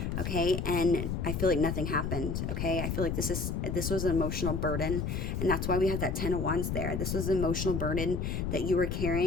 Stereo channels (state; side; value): noise; left; rumble, 1 dB below the sound